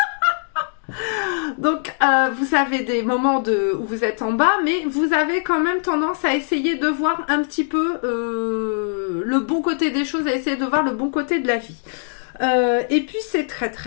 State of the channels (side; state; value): right; silent; digital silence